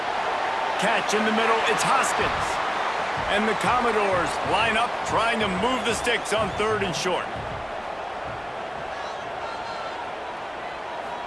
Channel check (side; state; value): both; identical; correlation 1.00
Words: Catch in the middle, it's Hoskins. And the Commodores line up, trying to move the sticks on 3rd and short.